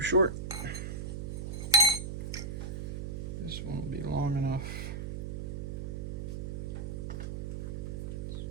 This one will be long enough.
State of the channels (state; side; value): noise; right; hum, 4 dB below the sound